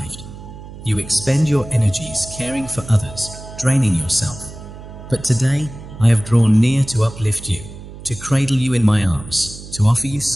You expend your energies caring for others, draining yourself. But today, I have drawn near to uplift you, to cradle you in my arms, to offer you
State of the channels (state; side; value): noise; right; hum, 14 dB below the sound